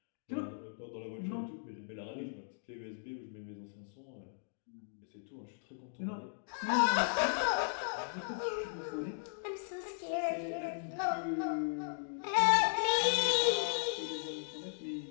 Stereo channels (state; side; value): silent; right; digital silence